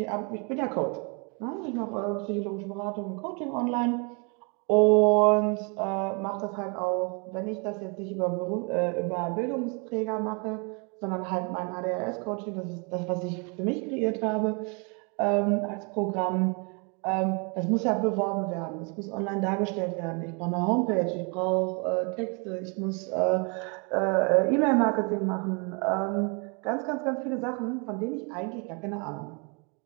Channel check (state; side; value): quieter; left; 34.0 dB